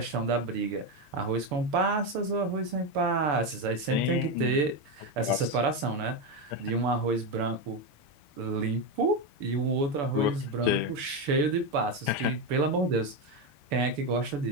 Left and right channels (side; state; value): left; late; 6.9 ms